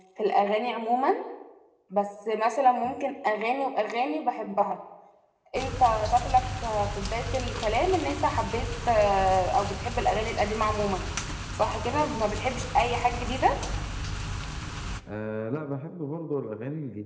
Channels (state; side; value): identical; both; correlation 1.00